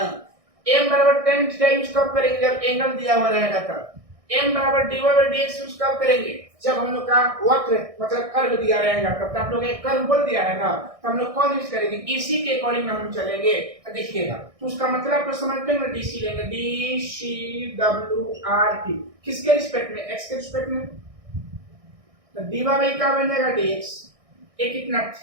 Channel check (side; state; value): left; late; 1.6 ms